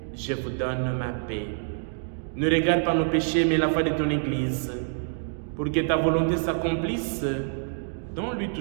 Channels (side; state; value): left; silent; 60 dB below the other